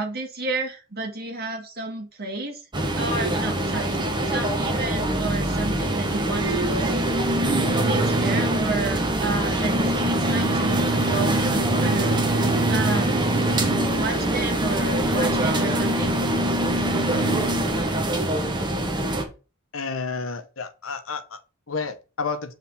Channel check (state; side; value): normal; both; correlation 0.47